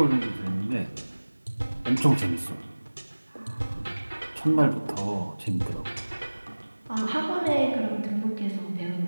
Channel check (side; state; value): both; inverted; correlation -1.00